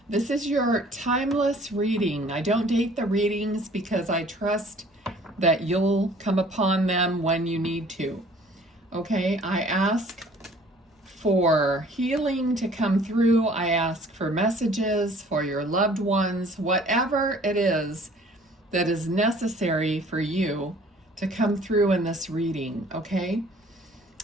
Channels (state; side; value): normal; both; correlation 0.53